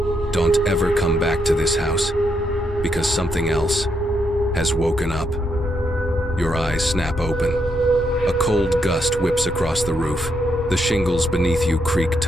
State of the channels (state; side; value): normal; both; correlation 0.79